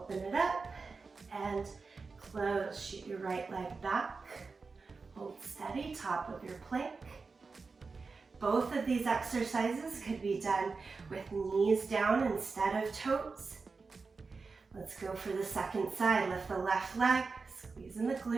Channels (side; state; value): left; quieter; 4.4 dB